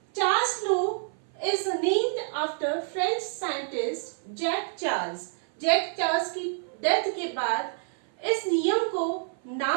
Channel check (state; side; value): silent; left; 56 dB below the other